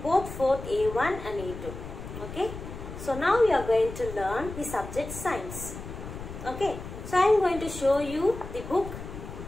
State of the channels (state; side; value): noise; left; rumble, 10 dB below the sound